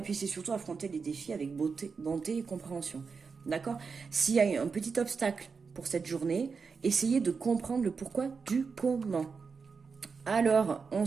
puis c'est surtout affronter les défis avec bonté et compréhension, d'accord. S'il y a un petit obstacle pour cette journée, essayez de comprendre le pourquoi du comment. Alors, on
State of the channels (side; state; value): left; quieter; 5.2 dB